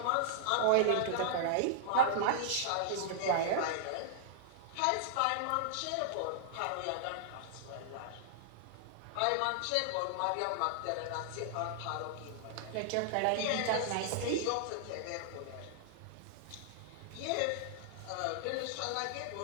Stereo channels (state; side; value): different; both; correlation -0.01